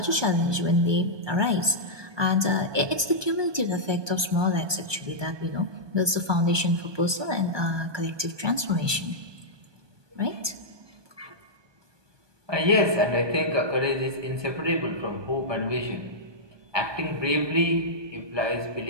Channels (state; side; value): late; left; 1.2 ms